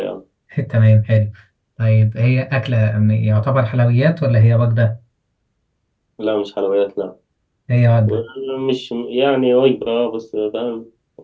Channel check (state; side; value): identical; both; correlation 1.00